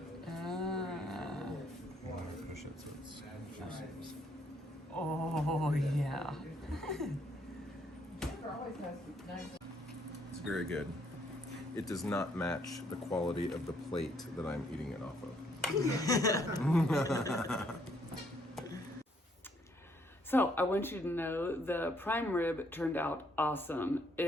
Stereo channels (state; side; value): normal; both; correlation 0.69